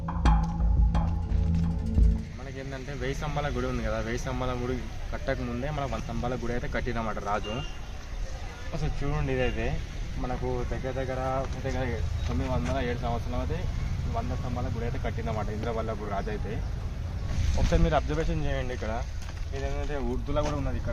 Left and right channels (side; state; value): both; identical; correlation 1.00